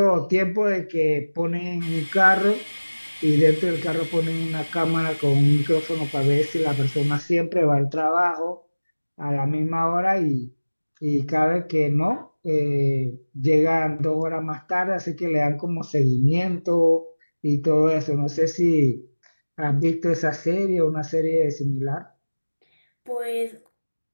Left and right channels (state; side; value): inverted; both; correlation -1.00